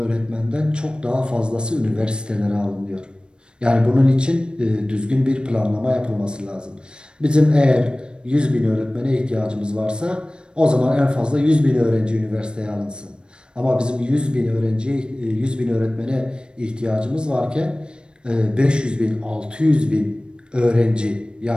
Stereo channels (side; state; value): left; late; 0.053 ms